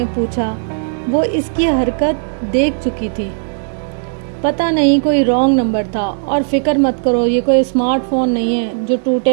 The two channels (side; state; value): left; silent; 69 dB below the other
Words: پوچھا۔ وہ اس کی حرکت دیکھ چکی تھی۔ پتہ نہیں، کوئی رانگ نمبر تھا، اور فکر مت کرو، یہ کوئی اسمارٹ فون نہیں ہے جو